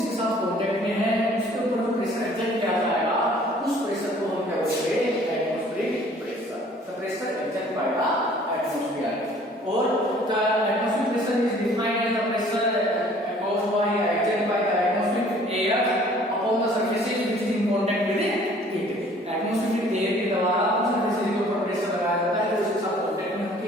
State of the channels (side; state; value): both; normal; correlation 0.54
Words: साथ कांटेक्ट में है उसके ऊपर जो प्रेशर एग्जर्ट किया जाएगा, उस प्रेशर को हम क्या बोलेंगे? Atmospheric pressure. The pressure exert by the atmosphere. और the atmospheric pressure is defined as the pressure caused by exerted by the atmospheric air upon the surfaces which is in contact with it। Atmospheric air के द्वारा उस surface के ऊपर pressure लगाया जाता है जो उसके साथ कांटेक्ट में होती